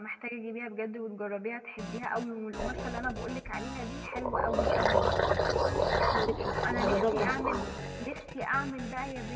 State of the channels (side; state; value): both; identical; correlation 1.00